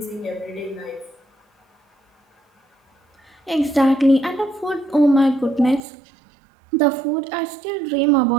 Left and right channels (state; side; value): drops out; left; at 5.8 s